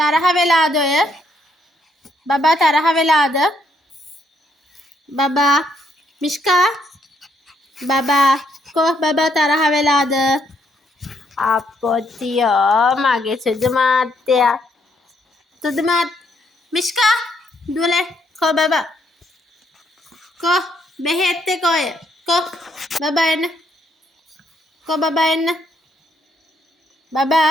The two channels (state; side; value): normal; both; correlation 0.73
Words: වෙලාද ඔය? බබා තරහ වෙලාද? බබා මිෂ්කා බබා කො බබා තරහ වෙලාද? අපොතියෝ මගේ සුදු මාත්තයා. සුදු මාත් මිෂ්කා දුවලේ කො බබා කො බෙහෙත් එක ඔය කො බබා එන්න කො බබා එන්න